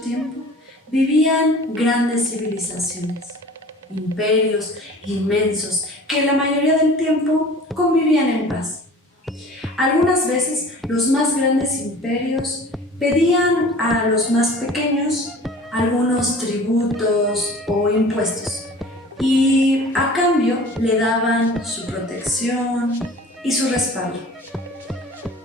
tiempo, vivían grandes civilizaciones, imperios inmensos que la mayoría del tiempo convivían en paz. Algunas veces los más grandes imperios pedían a los más pequeños algunos tributos o impuestos y a cambio le daban su protección y su respaldo.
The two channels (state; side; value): normal; both; correlation 0.44